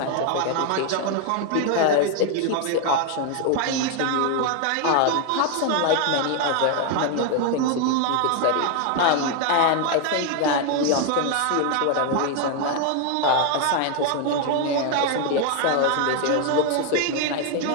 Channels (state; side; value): different; both; correlation 0.01